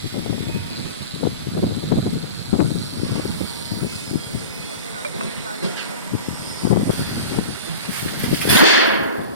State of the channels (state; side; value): inverted; both; correlation -0.33